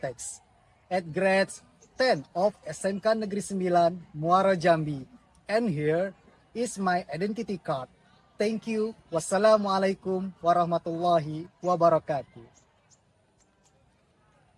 at grade 10 of SMK Negeri 9 Muara Jambi. And here is my identity card. Thank you. Wassalamualaikum warahmatullahi wabarakatuh.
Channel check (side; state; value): both; identical; correlation 1.00